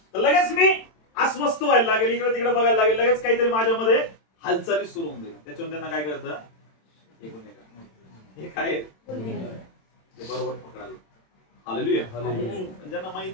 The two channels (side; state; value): right; late; 27 ms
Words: तर लगेच मी अस्वस्थ व्हायला लागेल, इकडे तिकडे बघायला लागेल, लगेच काहीतरी माझ्यामध्ये हालचाली सुरू होऊन जाईल. त्याच्यावर त्यांना काय करतं? हे काय ते बरोबर पकडायला. हालेलुया. ज्यांना